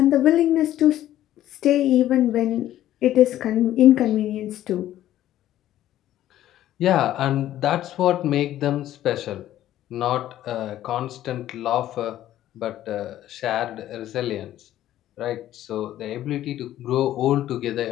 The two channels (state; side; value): quieter; right; 13.0 dB